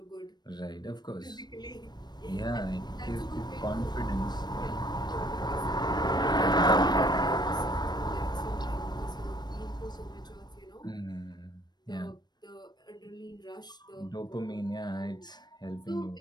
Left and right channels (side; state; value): right; late; 0.21 ms